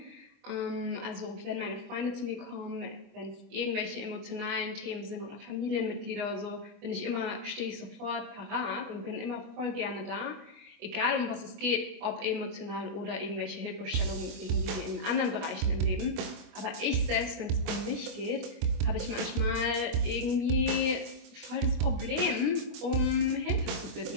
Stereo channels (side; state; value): left; late; 24 ms